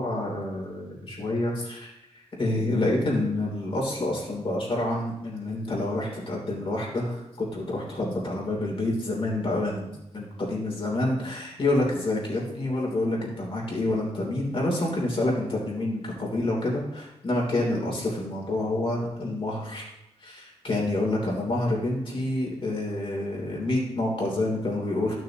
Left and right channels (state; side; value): normal; both; correlation 0.77